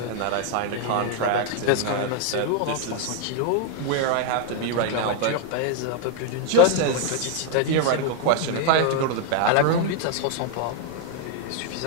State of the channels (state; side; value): different; both; correlation 0.00